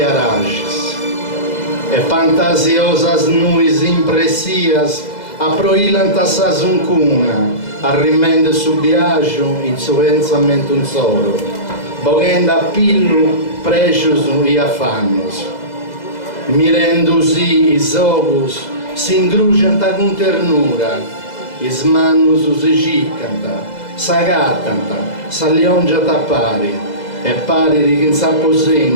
E fantasiosas nuis impressias aproilant a sa zuncuna, arrimende su biagio in su pensamento un solo, boghenda a pillu precios e affannos. Mirendosi is ocus si ingrugianta con ternura, is mannus si ciccanta, s'agattanta, s'alliongiata pari, e pari di chi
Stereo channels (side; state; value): right; late; 2.0 ms